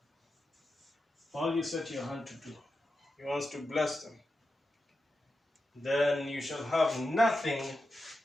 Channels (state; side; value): normal; both; correlation 0.90